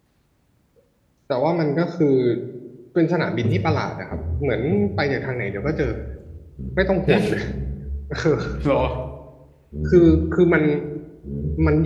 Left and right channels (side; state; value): both; identical; correlation 1.00